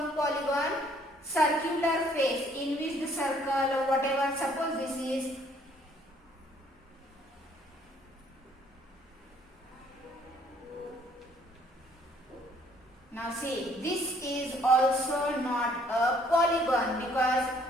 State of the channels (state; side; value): normal; both; correlation 0.62